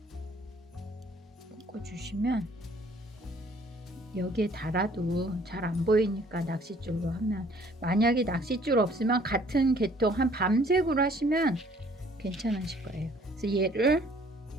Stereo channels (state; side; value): normal; both; correlation 0.58